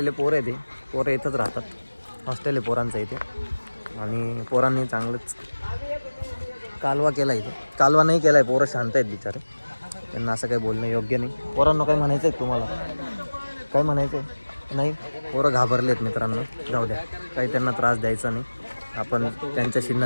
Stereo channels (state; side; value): inverted; both; correlation -1.00